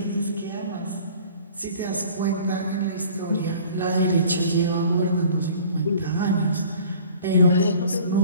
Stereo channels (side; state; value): both; inverted; correlation -0.49